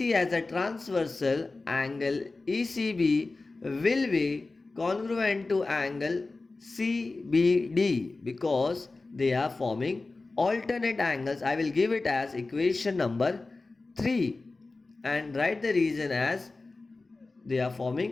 as a transversal, angle ECB will be congruent to angle CBD because they are forming alternate angles. I will give it as equation number 3 and write the reason as they are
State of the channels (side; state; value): right; quieter; 3.5 dB